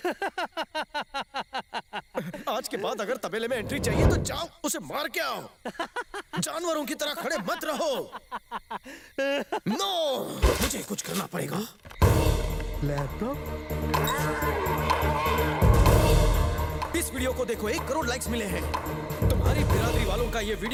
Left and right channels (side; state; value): both; identical; correlation 1.00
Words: आज के बाद अगर तबेले में एंट्री चाहिए तो जाओ, उसे मार के आओ। जानवरों की तरह खड़े मत रहो। नो, मुझे कुछ करना पड़ेगा। लैपटॉप? इस वीडियो को देखो, 1 करोड़ लाइक्स मिले हैं। तुम्हारी बिरादरी वालों का ये